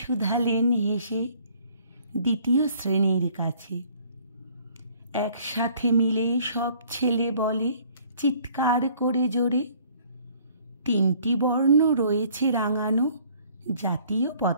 শুধালেন হেসে দ্বিতীয় শ্রেণীর কাছে। একসাথে মিলে সব ছেলে বলে চিৎকার করে জোরে, 3টি বর্ণ রয়েছে রাঙানো জাতীয়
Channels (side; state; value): both; inverted; correlation -0.58